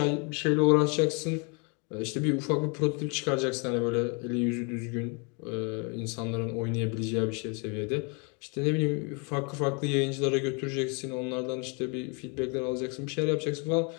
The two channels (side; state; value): right; quieter; 33.8 dB